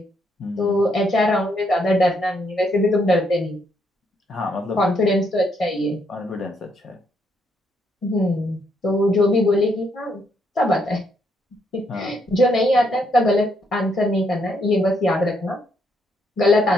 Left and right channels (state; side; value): normal; both; correlation 0.74